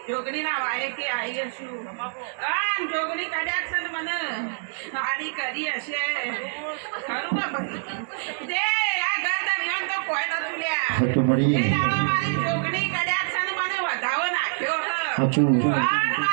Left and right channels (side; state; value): left; silent; digital silence